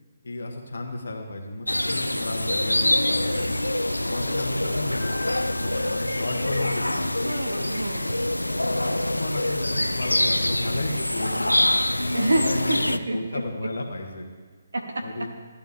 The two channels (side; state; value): both; inverted; correlation -0.96